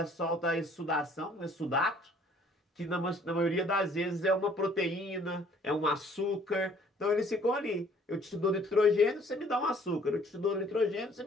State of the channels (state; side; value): normal; both; correlation 0.58